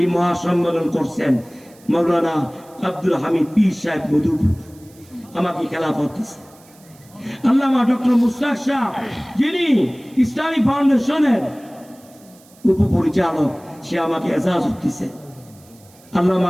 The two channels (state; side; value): noise; right; hiss, 27 dB below the sound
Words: মহাসম্মেলন করছেন মাওলানা আব্দুল হামিদ পীর সাহেব মধুপুর। আমাকে খেলাফত দিচ্ছে আল্লামা ডক্টর মুশতাক শাহ, যিনি ইসলামী ফাউন্ডেশনের উপপরিচালক, সে আমাকে এজাজত দিচ্ছে।